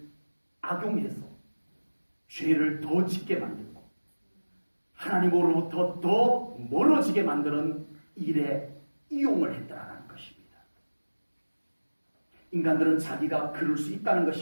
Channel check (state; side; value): inverted; both; correlation -1.00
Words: 악용해서 죄를 더 짓게 만들고 하나님으로부터 더 멀어지게 만드는 일에 이용을 했다는 것입니다. 인간들은 자기가 그럴 수 있다는